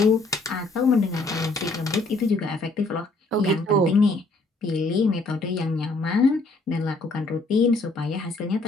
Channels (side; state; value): right; quieter; 3.1 dB